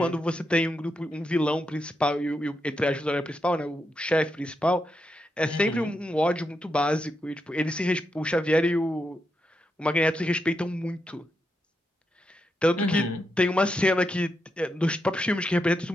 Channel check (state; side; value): normal; both; correlation 0.84